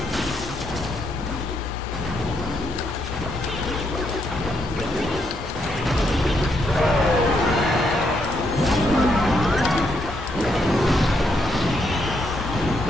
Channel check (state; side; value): normal; both; correlation 0.76